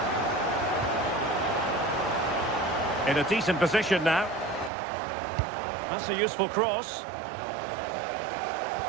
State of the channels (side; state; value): left; drops out; at 4.7 s